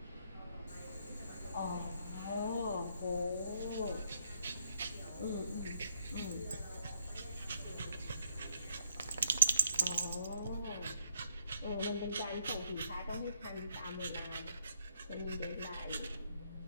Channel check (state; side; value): inverted; both; correlation -0.72